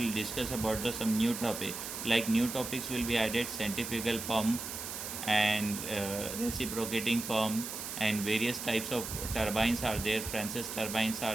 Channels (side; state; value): right; noise; hiss, 7 dB below the sound